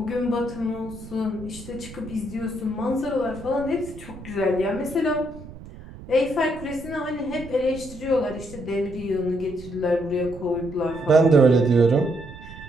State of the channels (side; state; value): right; noise; rumble, 15 dB below the sound